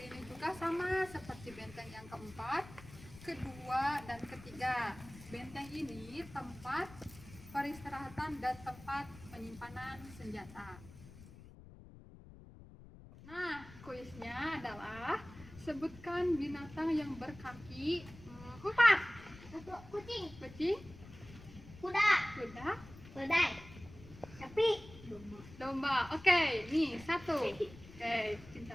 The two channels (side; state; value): left; noise; rumble, 18 dB below the sound